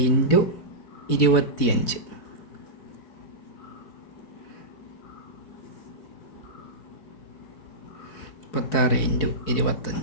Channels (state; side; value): late; right; 4.6 ms